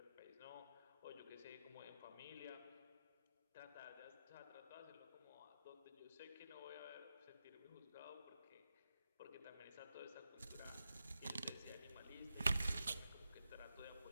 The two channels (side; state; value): both; inverted; correlation -0.89